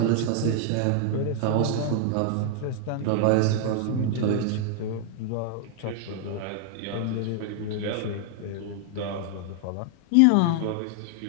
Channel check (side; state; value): both; different; correlation 0.00